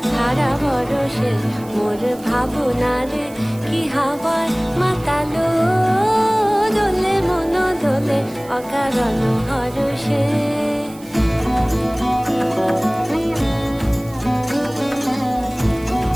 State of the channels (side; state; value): right; noise; hiss, 22 dB below the sound